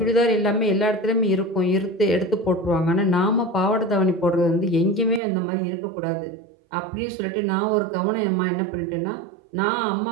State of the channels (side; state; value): left; drops out; at 5.2 s